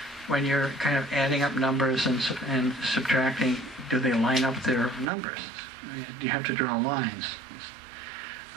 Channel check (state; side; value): drops out; left; at 5.1 s